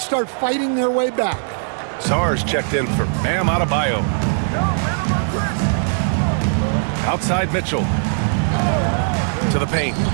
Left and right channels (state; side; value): silent; left; digital silence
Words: start fighting their way back. Sar's checked in for Bam Adebayo. Outside Mitchell. To the paint.